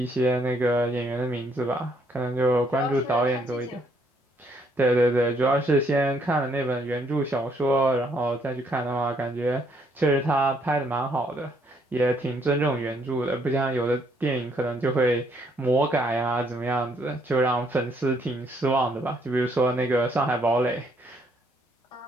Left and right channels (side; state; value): both; normal; correlation 0.69